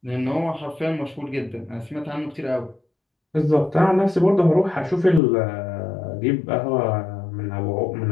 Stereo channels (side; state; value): right; drops out; at 5.2 s